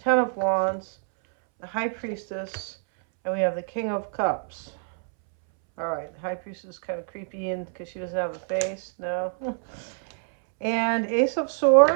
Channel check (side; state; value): left; silent; 61 dB below the other